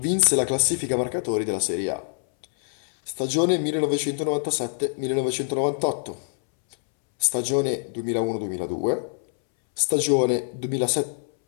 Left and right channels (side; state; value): right; silent; 62 dB below the other